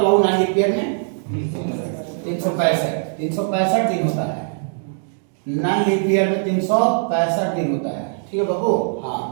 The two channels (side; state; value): left; silent; digital silence